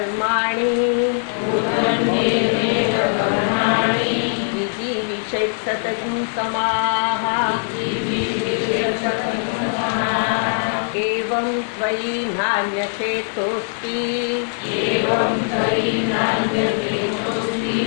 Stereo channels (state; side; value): silent; right; digital silence